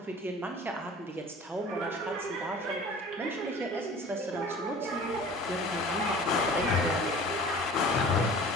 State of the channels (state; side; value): normal; both; correlation 0.44